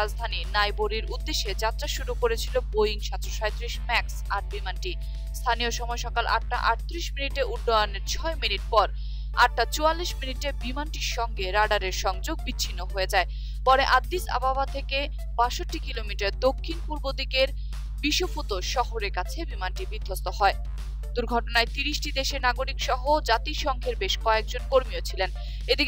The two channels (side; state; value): both; identical; correlation 1.00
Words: নাইরোবির উদ্দেশ্যে যাত্রা শুরু করেছিল বোয়িং 737 ম্যাক্স 8 বিমানটি। স্থানীয় সময় সকাল 8টা 38 মিনিটে উড্ডয়নের 6 মিনিট পর 8টা 44 মিনিটে বিমানটির সঙ্গে রাডারের সংযোগ বিচ্ছিন্ন হয়ে যায়। পরে আদ্দিস আবাবা থেকে 62 কিলোমিটার দক্ষিণ পূর্ব দিকের বিশোফুতো শহরের কাছে বিমানটি বিধ্বস্ত হয়। দুর্ঘটনায় 30টি দেশের নাগরিক সহ জাতিসংঘের বেশ কয়েকজন কর্মীও ছিলেন।